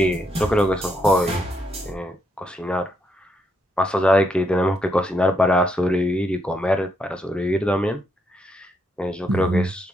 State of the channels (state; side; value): normal; both; correlation 0.77